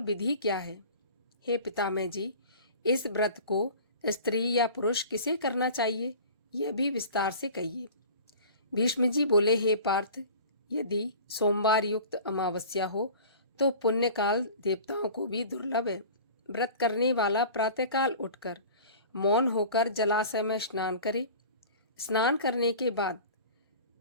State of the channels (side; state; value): both; inverted; correlation -0.41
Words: विधि क्या है? हे पितामह जी, इस व्रत को स्त्री या पुरुष किसे करना चाहिए, यह भी विस्तार से कहिए। भीष्म जी बोले, हे पार्थ, यदि सोमवार युक्त अमावस्या हो तो पुण्यकाल देवताओं को भी दुर्लभ है। व्रत करने वाला प्रातःकाल उठकर मौन होकर जलाशय में स्नान करे। स्नान करने के बाद